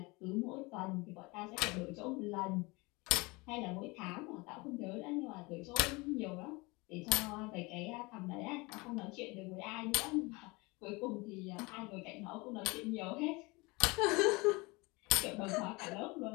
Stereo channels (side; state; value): right; quieter; 25.2 dB